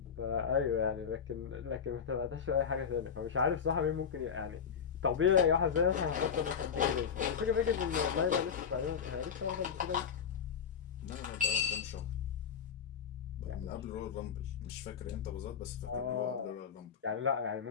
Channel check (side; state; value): right; quieter; 7.1 dB